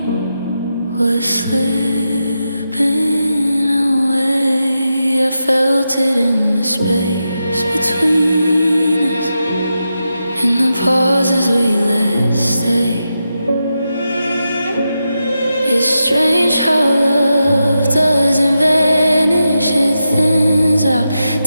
I felt it in the space between us, in the pauses we let stay. It's strange how love doesn't vanish, it thins out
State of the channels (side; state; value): both; inverted; correlation -0.88